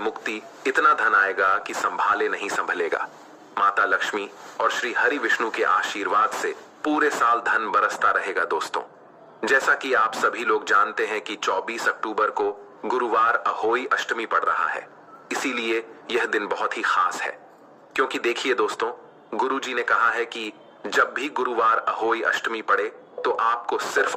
इतना धन आएगा कि संभाले नहीं संभलेगा। माता लक्ष्मी और श्री हरि विष्णु के आशीर्वाद से पूरे साल धन बरसता रहेगा। दोस्तों, जैसा कि आप सभी लोग जानते हैं कि 24 अक्टूबर को गुरुवार अहोई अष्टमी पड़ रहा है, इसीलिए यह दिन बहुत ही खास है। क्योंकि देखिए दोस्तों, गुरुजी ने कहा है कि जब भी गुरुवार अहोई अष्टमी पड़े तो आपको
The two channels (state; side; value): identical; both; correlation 1.00